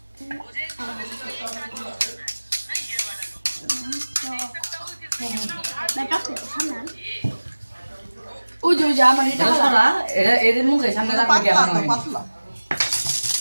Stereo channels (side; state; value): both; inverted; correlation -1.00